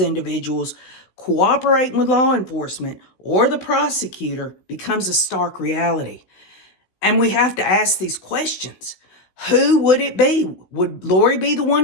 cooperating with law enforcement or the prosecutor becomes a stark reality. And we have to ask these questions. Who would it be? Would Lori be the one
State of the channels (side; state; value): right; late; 16 ms